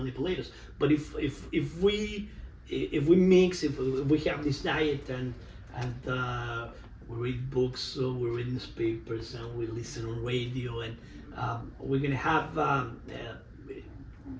us. But if we mix, if we have this diet and we read books, we read newspapers, and we listen on radio, and we're gonna have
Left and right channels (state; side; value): identical; both; correlation 1.00